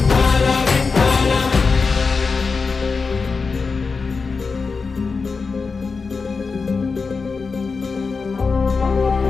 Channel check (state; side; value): quieter; right; 4.7 dB